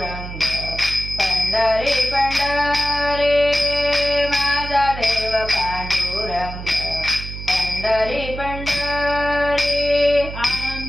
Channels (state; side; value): noise; right; hum, 9 dB below the sound